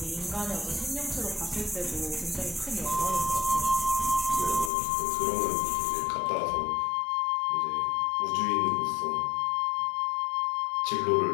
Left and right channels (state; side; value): drops out; right; at 4.7 s